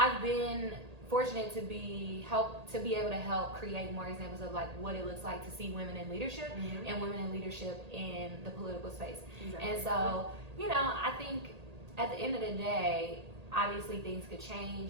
been fortunate to be able to help create more examples of like what it looks like to see women in leadership and women in leadership in the political space. And so I think at the end of the day, obviously things could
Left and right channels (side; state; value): left; late; 1.8 ms